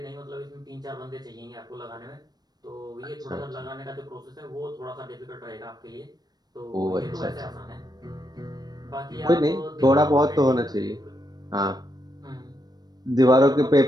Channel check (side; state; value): left; late; 0.19 ms